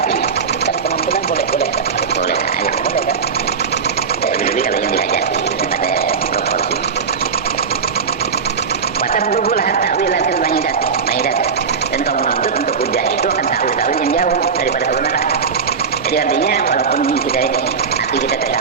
apinya. Kalau kemampuan boleh. Boleh, ayo. Boleh kan? Jadi kalau yang dihajati ada proporsi. Watablughul ta'wilatil ba'idat. Dan kau menuntut untuk hujjah itu akan ta'wil-ta'wil yang jauh daripada kebenaran. Jadi artinya walaupun kita ini hati kita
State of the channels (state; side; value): quieter; left; 5.8 dB